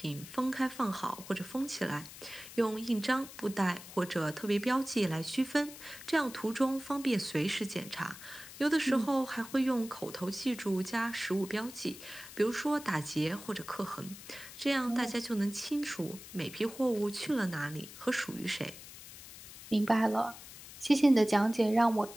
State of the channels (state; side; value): noise; left; hiss, 15 dB below the sound